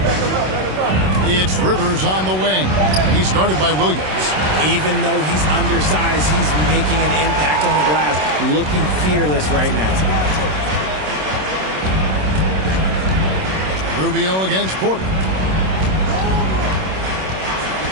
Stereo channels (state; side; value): late; left; 27 ms